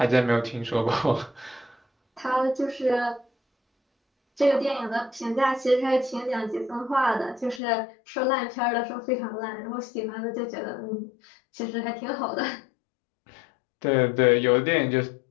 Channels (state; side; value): drops out; right; at 7.6 s